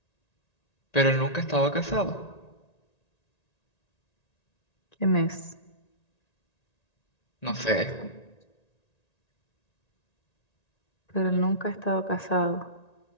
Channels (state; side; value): late; right; 1.9 ms